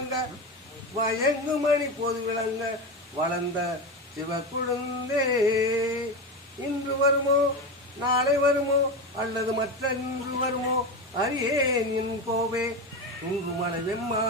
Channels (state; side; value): normal; both; correlation 0.20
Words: வயங்கு மணி போது விளங்க வளர்ந்த சிவக்குழுந்தே இன்று வருமோ நாளை வருமோ அல்லது மற்ற இன்று வருமோ அறியேன் என் கோவே துங்குமலை